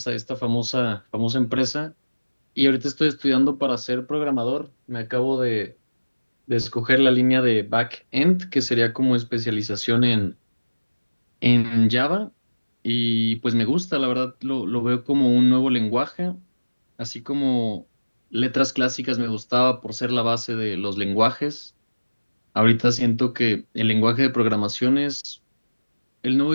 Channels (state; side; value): inverted; both; correlation -1.00